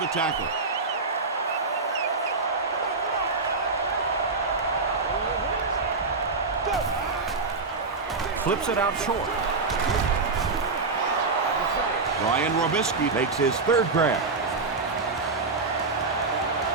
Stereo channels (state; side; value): quieter; left; 4.1 dB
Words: tackle. Flips it out short. Brian Robisky Makes his third grab.